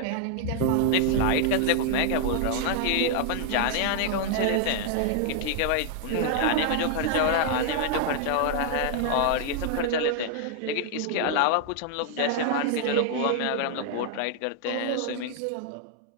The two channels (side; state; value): both; different; correlation 0.00